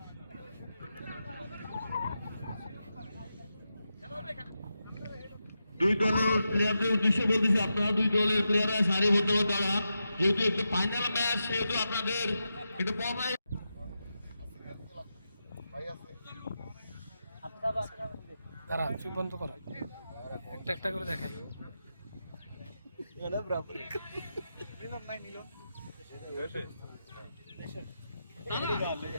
দুই দলের প্লেয়ারদের উদ্দেশ্যে বলতেছি, আপনারা দুই দলের প্লেয়াররা সারিবদ্ধভাবে দাঁড়ান। যেহেতু একটু ফাইনাল ম্যাচ, সেহেতু আপনাদের একটু তারা চুপ বন্ধ করা, একটা একটা করে দেখাই।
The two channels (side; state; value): both; inverted; correlation -0.89